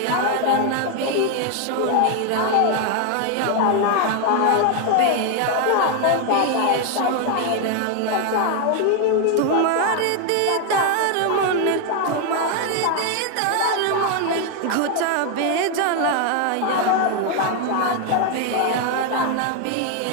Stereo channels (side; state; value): both; different; correlation 0.01